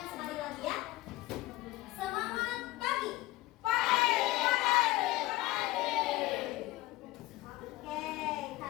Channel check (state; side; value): quieter; right; 18.6 dB